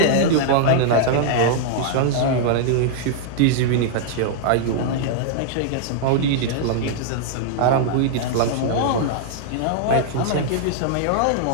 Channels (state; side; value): different; both; correlation -0.01